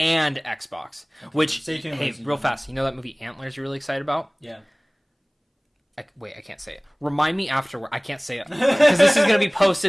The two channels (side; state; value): both; identical; correlation 1.00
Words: Xbox. Which Stay tuned, hey, ladies and real gentlemen. fast, you know that movie Antlers you're really excited about? Yeah. Wait, I can't say it. Remind me afterward. I can't say it because this is going to be